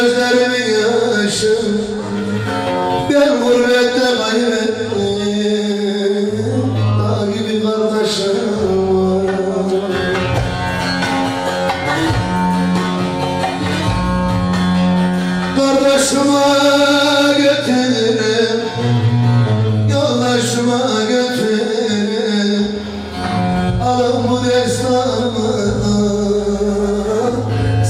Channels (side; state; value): both; identical; correlation 1.00